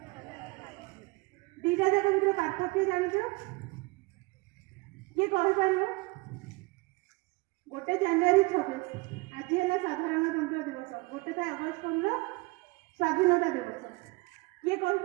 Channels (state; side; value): quieter; left; 25.0 dB